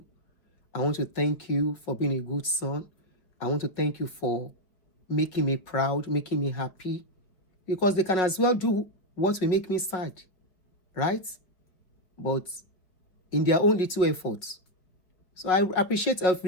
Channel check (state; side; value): late; right; 5.1 ms